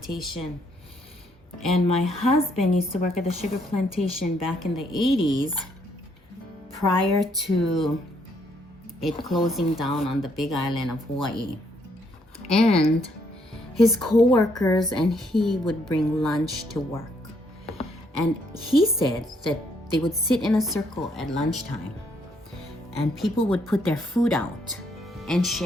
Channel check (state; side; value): normal; both; correlation 0.71